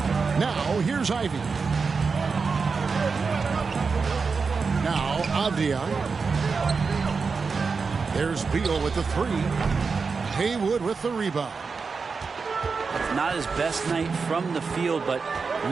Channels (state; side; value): quieter; left; 4.9 dB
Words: Now, here's Ivy. Now, Avdia. There's Beal with the 3. Haywood with the rebound. Not his best night from the field, but